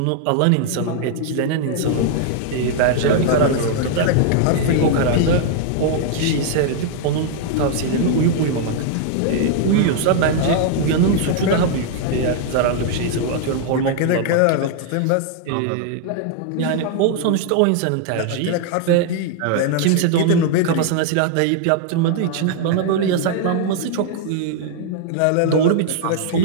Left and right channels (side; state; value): both; different; correlation 0.00